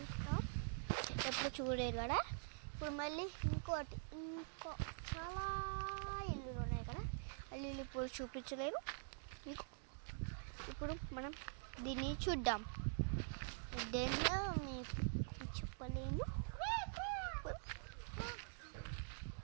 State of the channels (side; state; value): left; silent; digital silence